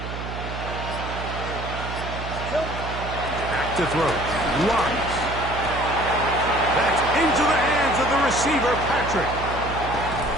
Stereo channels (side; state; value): right; noise; hum, 7 dB below the sound